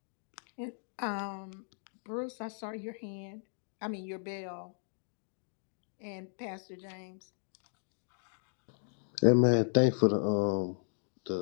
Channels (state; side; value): silent; right; digital silence